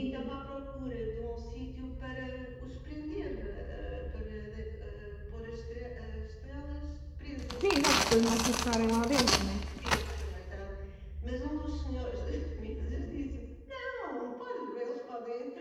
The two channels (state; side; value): identical; both; correlation 1.00